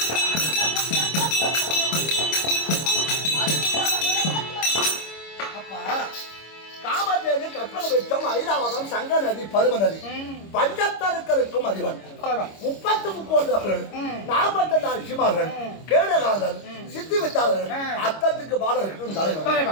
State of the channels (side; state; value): right; late; 25 ms